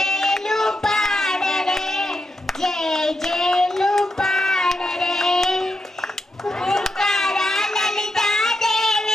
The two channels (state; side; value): normal; both; correlation 0.85